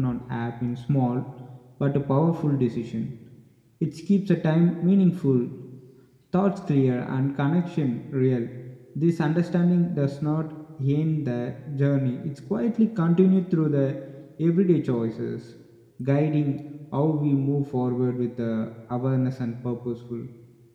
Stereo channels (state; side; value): identical; both; correlation 1.00